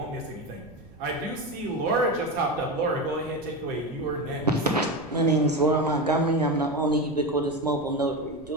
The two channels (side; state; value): right; noise; rumble, 20 dB below the sound